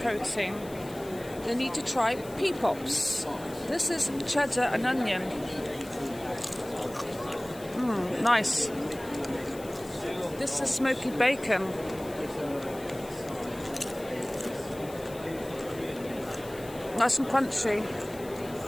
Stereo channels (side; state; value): left; noise; hiss, 19 dB below the sound